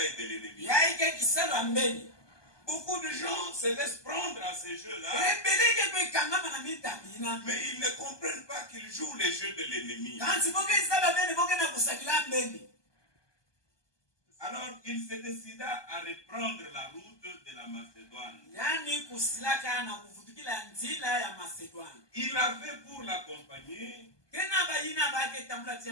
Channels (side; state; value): right; late; 1.2 ms